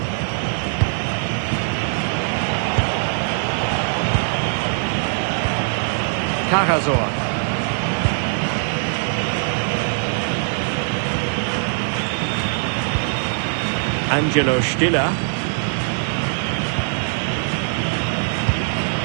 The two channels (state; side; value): silent; left; digital silence